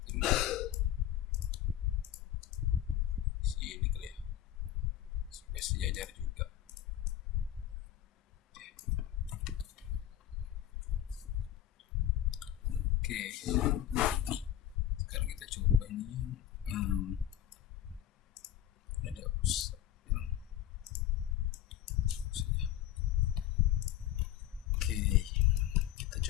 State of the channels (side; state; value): right; quieter; 11.8 dB